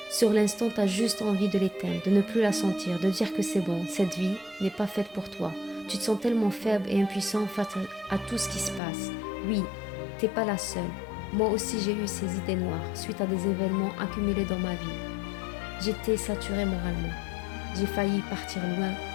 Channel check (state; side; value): drops out; right; at 8.8 s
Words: Sur l'instant, tu as juste envie de l'éteindre, de ne plus la sentir, de dire que c'est bon, cette vie n'est pas faite pour toi. Tu te sens tellement faible et impuissant face à tout ce qui se passe. Oui, t'es pas la seule. Moi aussi j'ai eu ces idées noires suite à des événements accumulés dans ma vie. J'étais saturée moralement. J'ai failli partir loin